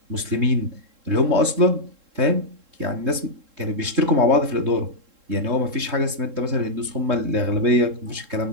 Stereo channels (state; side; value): late; left; 3.7 ms